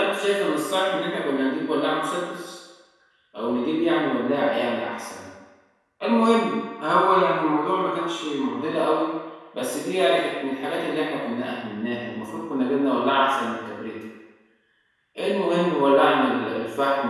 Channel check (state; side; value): identical; both; correlation 1.00